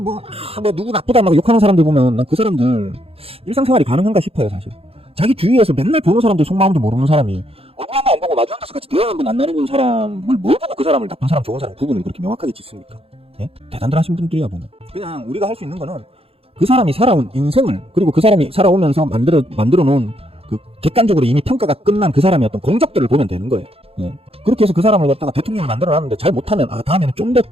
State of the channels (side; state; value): left; late; 0.28 ms